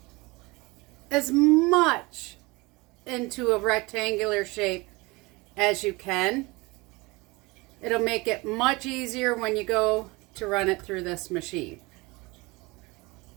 as much into a rectangular shape as you can. It'll make it much easier when you go to run it through this machine.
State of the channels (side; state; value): left; quieter; 24.1 dB